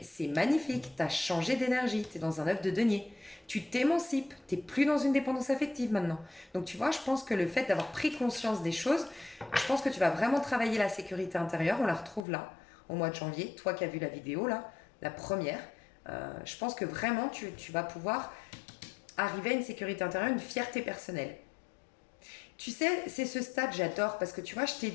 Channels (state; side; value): drops out; right; at 12.2 s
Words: c'est magnifique, tu as changé d'énergie, tu es dans un œuf de denier. Tu t'émancipes, tu n'es plus dans une dépendance affective maintenant. Donc tu vois, je pense que le fait d'avoir pris conscience des choses, je pense que tu vas vraiment travailler la sécurité intérieure, on la retrouve là, au mois de janvier, toi qui as vu la vidéo là, la première. Je pense que vraiment tu vas pouvoir arriver à une sécurité intérieure, une fierté personnelle. Tu sais, c'est ce stade, j'adore, parce que tu vois, je t'ai